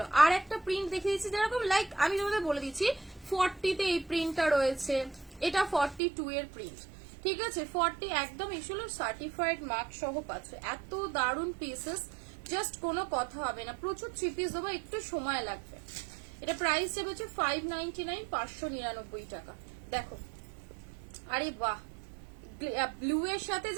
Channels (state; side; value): drops out; left; at 6.0 s